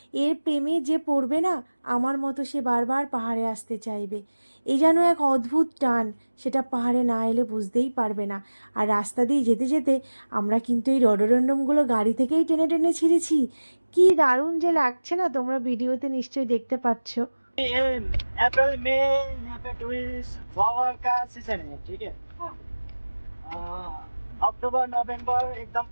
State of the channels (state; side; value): inverted; both; correlation -1.00